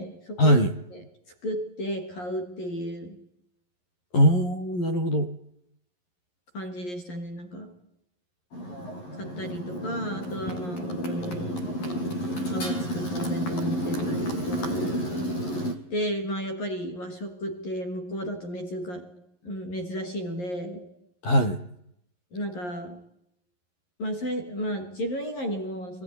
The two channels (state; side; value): late; right; 11 ms